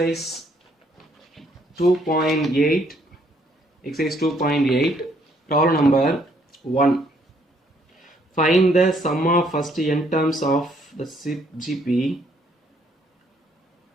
2.8. Exercise 2.8. Problem number 1. Find the sum of first n terms of the GP.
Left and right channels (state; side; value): normal; both; correlation 0.67